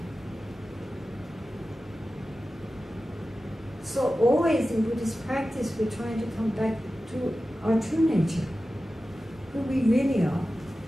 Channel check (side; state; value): both; normal; correlation 0.94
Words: So always in Buddhist practice, we're trying to come back to our true nature, who we really are.